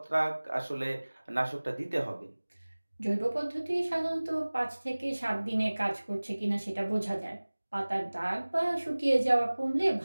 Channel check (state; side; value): inverted; both; correlation -1.00